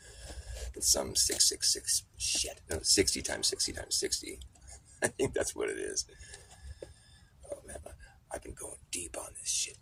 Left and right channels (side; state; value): both; identical; correlation 1.00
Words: It's some 666 shit. No, 60 times 60 times 60. I think that's what it is. Oh man, I've been going deep on this shit,